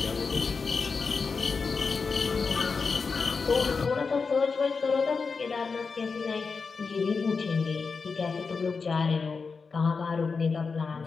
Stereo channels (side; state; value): right; quieter; 4.9 dB